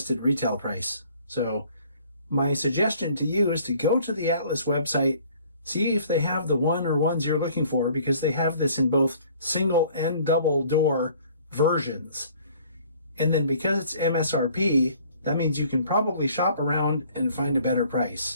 retail price. So my suggestion to you is to go to the Atlas website, see if they have the one or ones you're looking for, because they have this in both single and double door versions. And then because it's MSRP, that means you can probably shop around and find a better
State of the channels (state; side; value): inverted; both; correlation -0.55